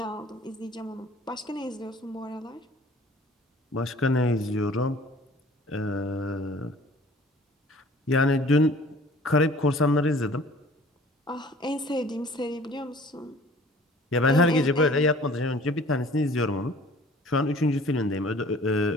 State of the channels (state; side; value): normal; both; correlation 0.50